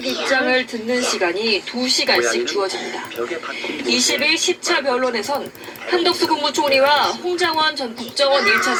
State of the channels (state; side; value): identical; both; correlation 1.00